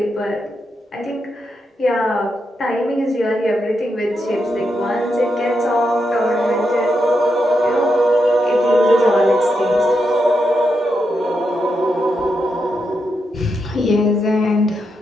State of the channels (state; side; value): normal; both; correlation 0.84